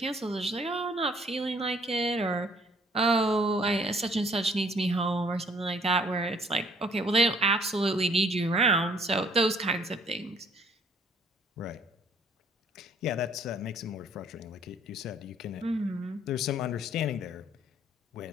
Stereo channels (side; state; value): both; normal; correlation 0.61